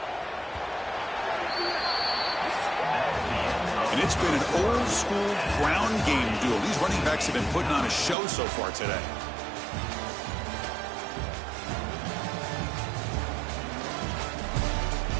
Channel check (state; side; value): drops out; left; at 8.2 s